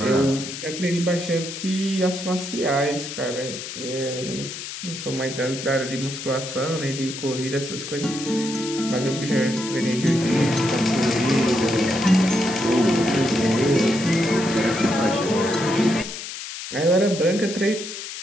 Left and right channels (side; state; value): left; noise; hiss, 9 dB below the sound